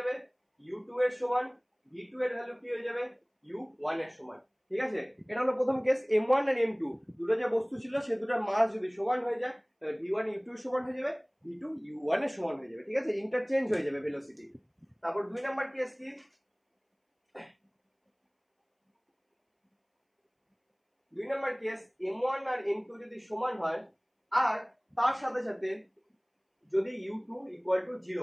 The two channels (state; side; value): identical; both; correlation 1.00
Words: u2 এর সমান, v2 এর ভ্যালু কি হয়ে যাবে u1 এর সমান, ঠিক আছে। এটা হলো প্রথম কেস। m1 আর m2 দুটো যে বস্তু ছিল সে দুটোর মাস যদি সমান হয়ে যায় তাহলে v1 u2 এর সমান হয়ে যাবে, v2 u1 এর সমান হয়ে যাবে, ঠিক আছে, ইন্টারচেঞ্জ হয়ে যাবে ভেলোসিটি। তারপর 2 নাম্বার কেস কি, 2 নাম্বার কেস m1 আর m2 যদি সমান হয় আর তার সাথে সাথে যদি u2 0